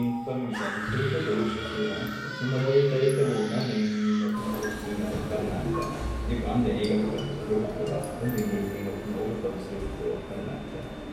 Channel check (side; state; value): both; identical; correlation 1.00